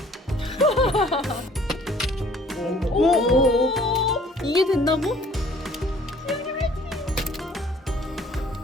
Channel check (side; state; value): both; normal; correlation 0.55